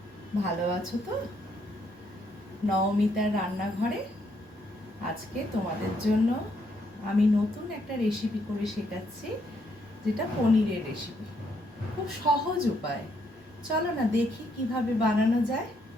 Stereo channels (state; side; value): normal; both; correlation 0.73